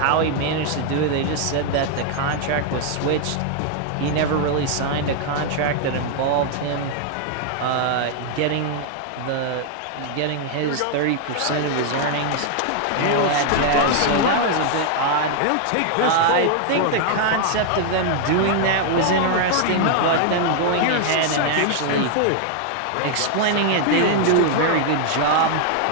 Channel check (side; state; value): both; different; correlation 0.00